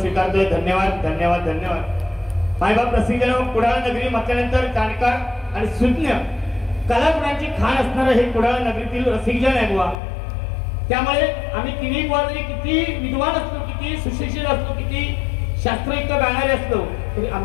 धन्यवाद, धन्यवाद, धन्यवाद. मायबाप रसिकजन, कुडाळ नगरी म्हटल्यानंतर जाणकार आणि सुज्ञ कलागुणांची खाण असणारं हे कुडाळ नगरीतील रसिकजन आहे बुवा. त्यामुळे आम्ही तिन्ही बुवा जरी किती विद्वान असलो, किती सुशिक्षित असलो, किती शास्त्रयुक्त गाणारे असलो, तरी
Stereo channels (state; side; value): drops out; right; at 10.0 s